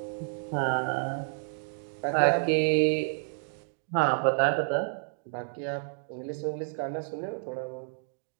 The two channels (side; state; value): left; silent; digital silence